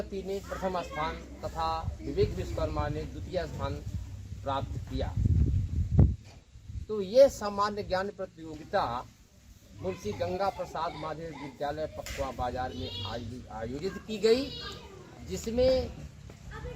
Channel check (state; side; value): identical; both; correlation 1.00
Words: ने प्रथम स्थान तथा विवेक विश्वकर्मा ने द्वितीय स्थान प्राप्त किया। तो ये सामान्य ज्ञान प्रतियोगिता मुंशी गंगा प्रसाद माध्यमिक विद्यालय पखवा बाजार में आयोजित की गई, जिसमें